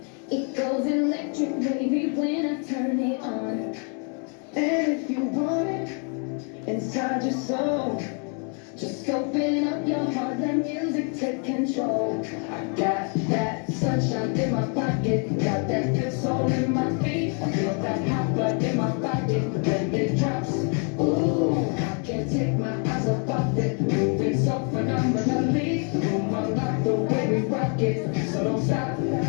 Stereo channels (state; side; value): quieter; right; 39.8 dB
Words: It goes electric wavy when I turn it on. And if you want it inside your soul, Just open up your heart, let music take control. I got that sunshine in my pocket, got that good soul in my feet. I feel that hot blood in my body when it drops. Ooh, I can't take my eyes off of it, moving so phenomenally. The room unlocked the way we rock it, so don't stop.